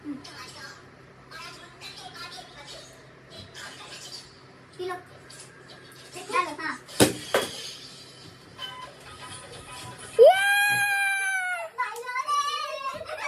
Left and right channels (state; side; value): identical; both; correlation 1.00